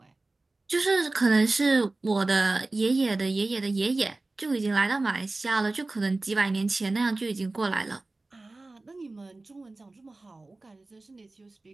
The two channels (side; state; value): left; quieter; 3.2 dB